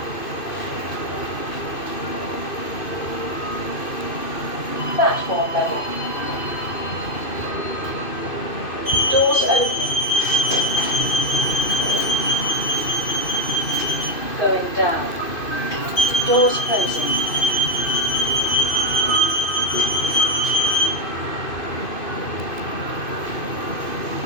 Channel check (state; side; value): late; right; 2.5 ms